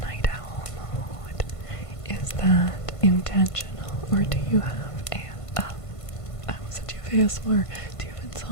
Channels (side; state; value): right; late; 1.5 ms